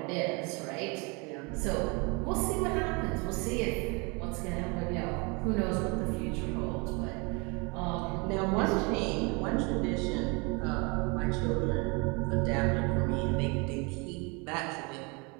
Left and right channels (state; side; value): quieter; left; 29.8 dB